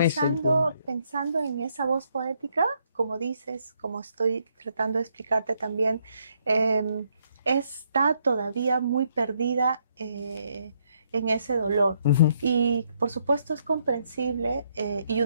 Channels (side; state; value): both; inverted; correlation -0.73